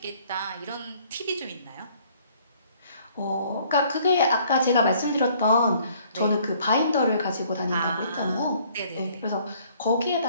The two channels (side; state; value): both; inverted; correlation -0.60